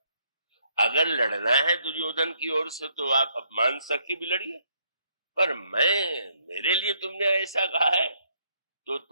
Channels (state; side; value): inverted; both; correlation -0.70